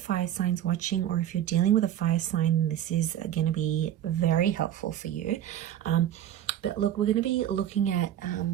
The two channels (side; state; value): left; quieter; 11.3 dB